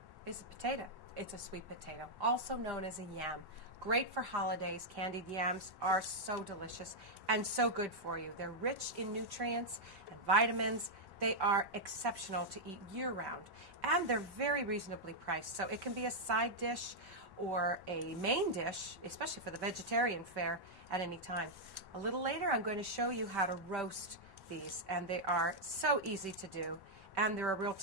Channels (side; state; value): left; late; 1.1 ms